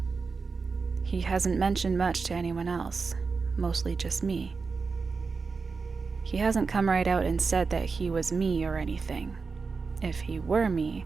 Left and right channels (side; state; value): left; quieter; 4.7 dB